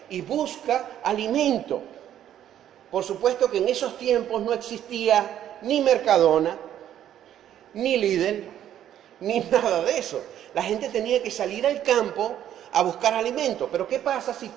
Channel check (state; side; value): quieter; left; 11.0 dB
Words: y busca alimento. Por supuesto que en esos tiempos no existía ni Mercadona, ni Lidl, ni nada de eso. La gente tenía que salir al campo a buscar alimento. Pero ¿qué pasa si